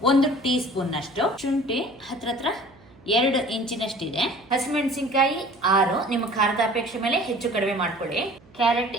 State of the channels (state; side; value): noise; right; hum, 27 dB below the sound